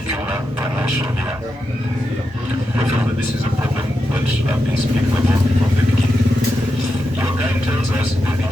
financial year. We feel that this is a problem that I've been speaking about from the beginning. Your guide tells us they've been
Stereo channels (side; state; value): both; normal; correlation 0.87